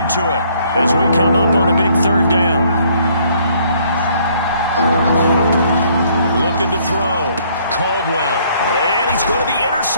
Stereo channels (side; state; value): both; inverted; correlation -0.63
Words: it as we come up on a big 3rd down. Looking to throw. Caldwell. And he's going to be